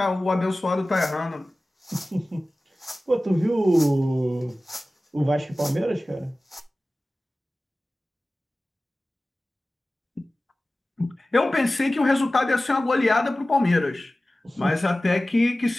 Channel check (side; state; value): both; normal; correlation 0.97